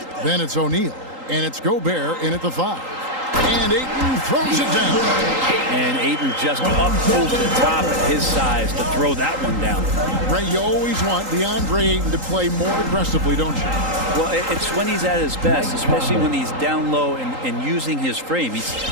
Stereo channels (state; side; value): late; left; 3.8 ms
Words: Then it's O'Neal. And it's Gobert in at the 5. And Ayton throws it down. And Ayton just up over the top at his size to throw that one down. Ray, you always want DeAndre Ayton to play more aggressively, don't you? Well, it's when he's at his best, especially when he's down low and using his frame.